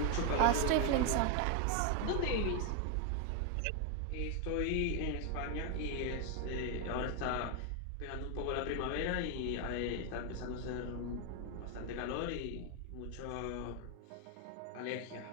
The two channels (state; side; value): different; both; correlation 0.01